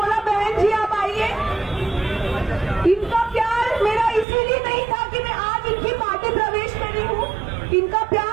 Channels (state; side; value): drops out; left; at 4.2 s